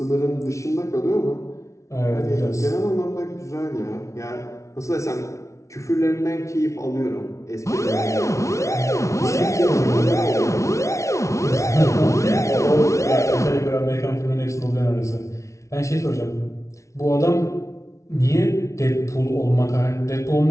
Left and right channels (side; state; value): right; late; 0.14 ms